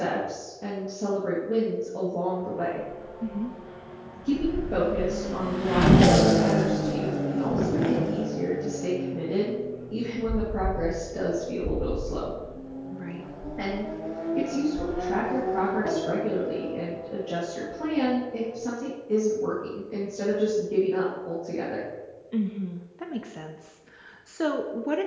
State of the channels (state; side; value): identical; both; correlation 1.00